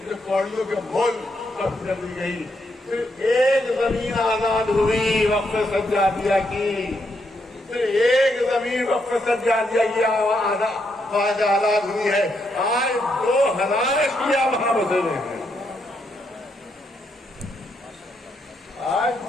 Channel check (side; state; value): both; normal; correlation 0.78